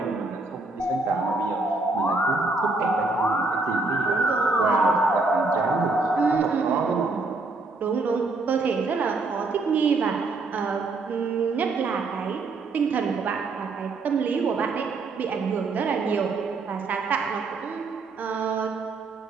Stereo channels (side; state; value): left; quieter; 3.6 dB